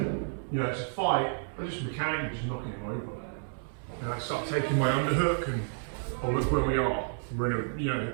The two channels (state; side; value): silent; left; digital silence